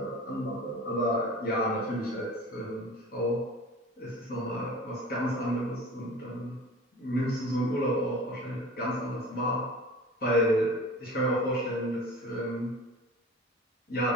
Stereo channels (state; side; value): normal; both; correlation 0.39